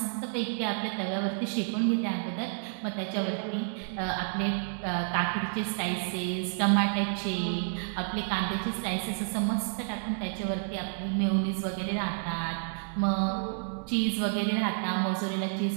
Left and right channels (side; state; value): left; silent; digital silence